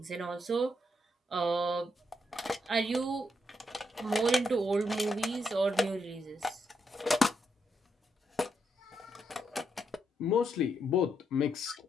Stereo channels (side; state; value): both; normal; correlation 0.79